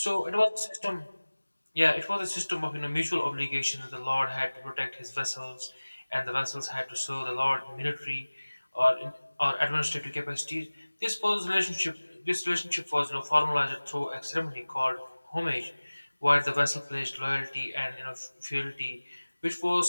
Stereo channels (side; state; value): both; inverted; correlation -1.00